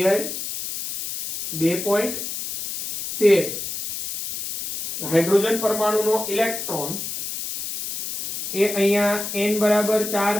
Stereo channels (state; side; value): noise; left; hiss, 6 dB below the sound